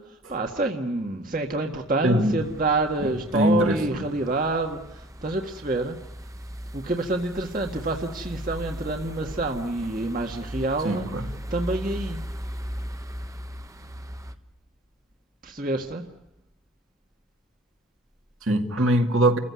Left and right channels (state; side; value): normal; both; correlation 0.49